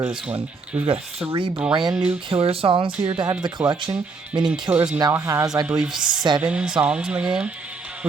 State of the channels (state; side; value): quieter; left; 4.2 dB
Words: this one. We've got 3 brand new Killers songs here to add to the collection, meaning Killers now has, I believe, 7 songs in the game,